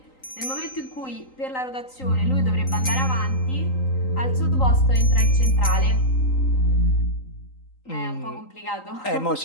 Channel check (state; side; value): late; right; 3.8 ms